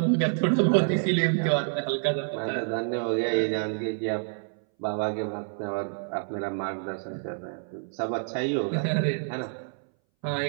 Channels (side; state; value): left; silent; 60 dB below the other